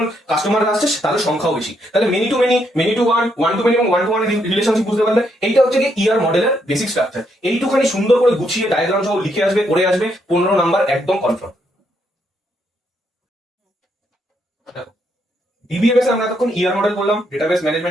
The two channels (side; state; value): both; normal; correlation 0.76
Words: কাস্টমার আসছে তাদের সংখ্যাও বেশি। তাহলে many to many, many two one, 1 to many এবং 1 to 1 রিলেশনশিপ বুঝতে পারলে এইটা হচ্ছে কি ইয়ার মডেলের বেসিক স্ট্রাকচার। এইটুখানি সুন্দর করে গুছিয়ে ডায়াগ্রাম সহ লিখে আসবে, করে আসবে, 15 নাম্বার একদম কনফার্ম। ডিবিএমএস এ আমরা এতক্ষণ ইয়ার মডেল করলাম, ডেটাবেস